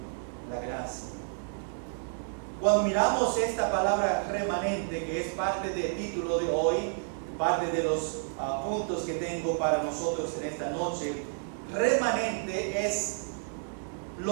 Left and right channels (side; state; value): left; silent; digital silence